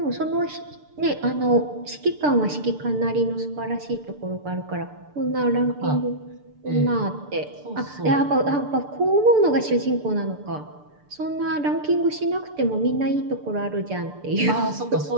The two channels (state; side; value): late; left; 6.8 ms